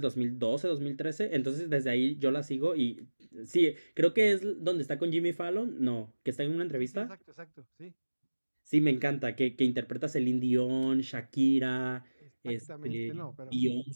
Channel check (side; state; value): both; inverted; correlation -1.00